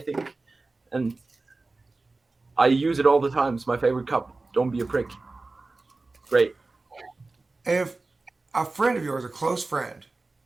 and I use it all the time. It's my favorite cup. Don't be a prick. Great. If a friend of yours, a close friend,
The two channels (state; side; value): quieter; left; 3.4 dB